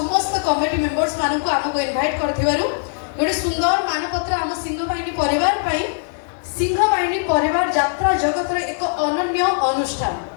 कमिटी मेंबर्स मानक आमको इनवाइट कर गोटे सुंदर मानपत्र आम सिंहबाहिनी परिवार सिंहबाहिनी परिवार यात्रा जगत एक अनन्य अनुष्ठान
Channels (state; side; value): silent; right; digital silence